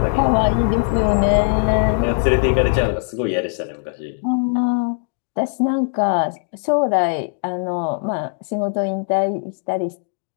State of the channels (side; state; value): right; silent; digital silence